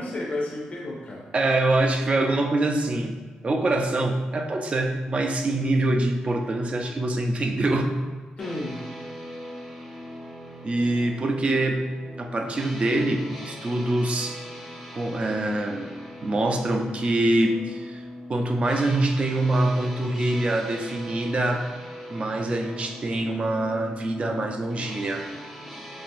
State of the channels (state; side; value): normal; both; correlation 0.86